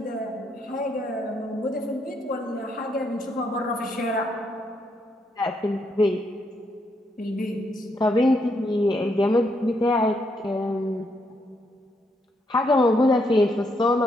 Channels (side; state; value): both; normal; correlation 0.76